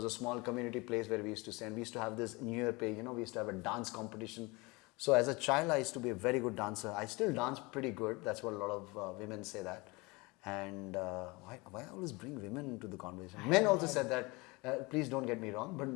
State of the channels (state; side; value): quieter; right; 25.3 dB